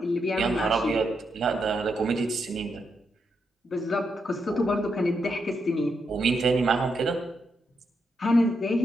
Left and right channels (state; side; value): normal; both; correlation 0.81